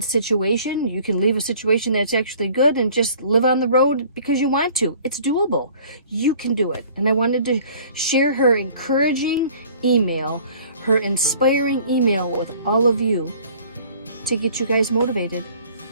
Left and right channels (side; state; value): both; inverted; correlation -0.52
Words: situation, you can leave a situation that's actually good and just live on the road because you want to. It's doable. You can do it. And I wanted to share her encouraging email, her inspiring email with all of you to get you guys motivated